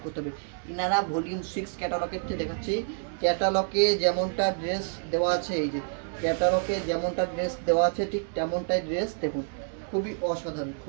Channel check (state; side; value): silent; left; 59 dB below the other